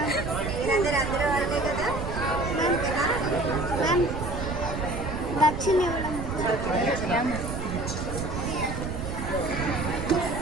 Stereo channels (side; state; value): right; noise; rumble, 6 dB below the sound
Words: మీరందరూ అందరూ వాళ్ళే కదా. దక్షిణ